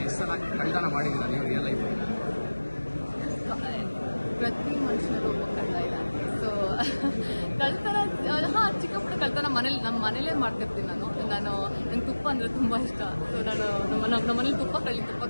ಎಷ್ಟು ಸಲ ಕಳ್ತನ ಮಾಡಿದ್ದೀರಾ ನೀವು ರಿಯಲ್ ಲೈಫ್? ಪ್ರತಿ ಮನುಷ್ಯನರು ಒಬ್ಬ ಕಳ್ಳ ಇದ್ದಾನೆ. ಸೊ ಕಳ್ತನ ಚಿಕ್ಕ ಪುಟ್ಟ ಕಳ್ತನ ನಮ್ಮ ಮನೇಲೇ ಮಾಡ್ತಿರ್ತೀನಿ. ನಂಗೆ ತುಪ್ಪ ಅಂದರೆ ತುಂಬ ಇಷ್ಟ. ಸೊ ನಾನು ನಮ್ಮ ಮನೇಲಿ ತುಪ್ಪ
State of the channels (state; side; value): inverted; both; correlation -1.00